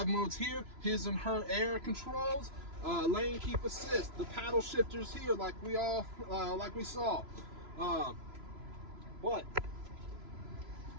modes here, his and her air controls, lane keep assist, the paddle shifters here like we saw. But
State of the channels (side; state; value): left; late; 3.0 ms